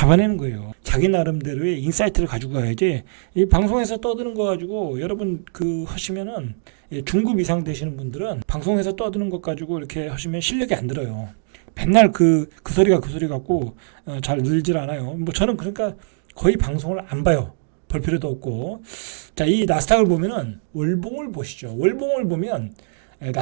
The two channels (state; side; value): silent; left; digital silence